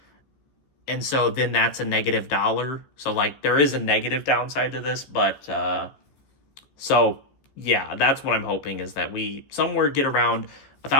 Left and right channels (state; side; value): late; right; 14 ms